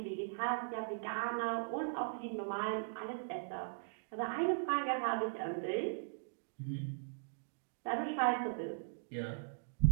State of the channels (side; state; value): left; silent; digital silence